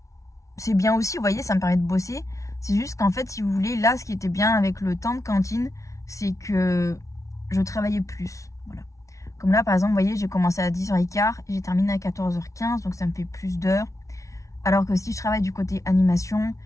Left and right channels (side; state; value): right; late; 0.15 ms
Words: c'est bien aussi, vous voyez, ça me permet de bosser. C'est juste qu'en fait, si vous voulez, là, ce qui était bien avec le temps de cantine, c'est que je travaillais plus, voilà. Comme là, par exemple, vous voyez, j'ai commencé à 10h15 et j'ai terminé à 14h15, donc ça me fait plus d'heures. Alors que si je travaille du côté animation,